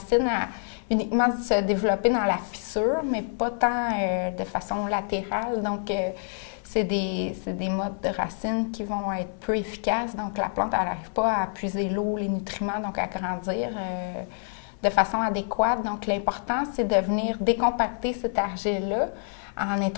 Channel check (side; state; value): right; silent; 60 dB below the other